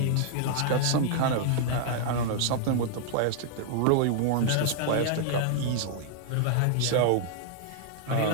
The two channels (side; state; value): both; different; correlation -0.01